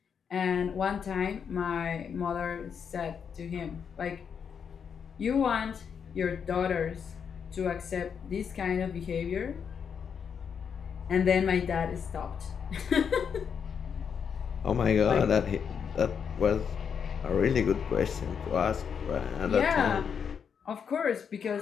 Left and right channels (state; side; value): quieter; right; 7.0 dB